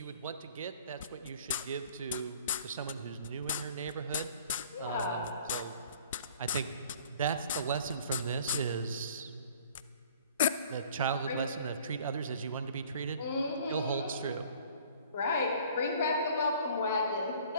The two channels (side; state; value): both; inverted; correlation -0.51